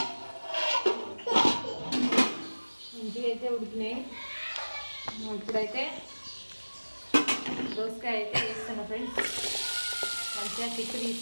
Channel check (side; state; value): both; inverted; correlation -1.00